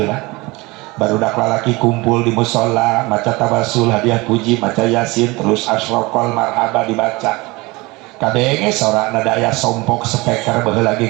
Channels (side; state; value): left; quieter; 23.3 dB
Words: Barudak lalaki kumpul di musola, maca tawasul, hadiah puji, maca yasin, terus asyraqal marhaba dibaca. Kadenge sorakna daya sompok speaker baheula